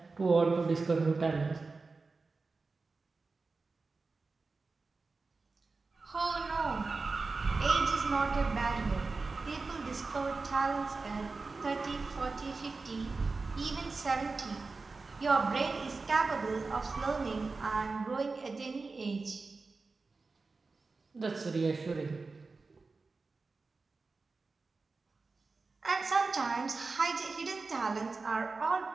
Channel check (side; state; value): left; quieter; 4.0 dB